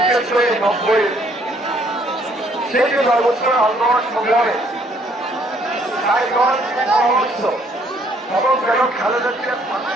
করে 90 সেই যে 9 বছর আন্দোলন সংগ্রামে তাই পরামর্শ এবং কেন খালেদা জিয়ার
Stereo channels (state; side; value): normal; both; correlation 0.65